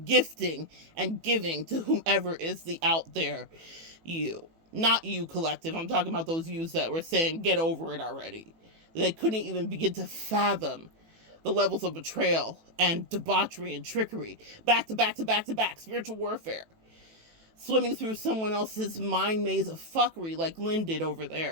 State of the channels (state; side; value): late; left; 18 ms